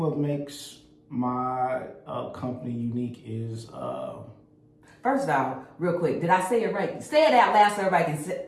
makes my company unique is first off, real quick, did I say it right? Say it out loud so everybody can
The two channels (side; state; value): both; identical; correlation 1.00